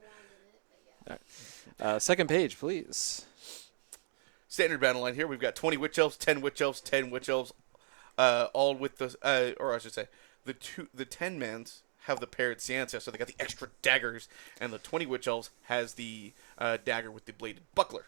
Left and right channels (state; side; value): silent; left; digital silence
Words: Second page, please. Standard battle line here. We've got 20 Witch Elves, 10 Witch Elves, 10 Witch Elves, all with the, or I should say, the 10 mans have the paired Ciancia, so they got the extra daggers, and the 20 Witch Elves has the dagger with the bladed buckler.